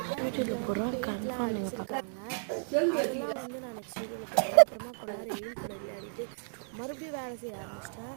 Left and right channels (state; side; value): silent; left; digital silence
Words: அதெல்லாம் வந்து நான் நெக்ஸ்ட் வீடியோவில் போடுறேன். அப்புறமா கொஞ்ச நேரம் எயில் கூட விளையாடிட்டு மறுபடியும் வேலை செய்ய ஆரம்பிச்சிட்டேன்.